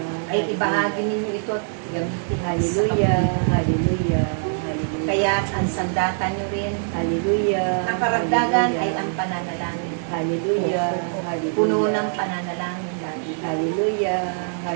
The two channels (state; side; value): silent; left; digital silence